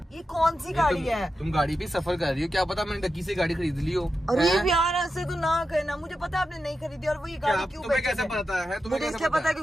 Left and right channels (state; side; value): normal; both; correlation 0.89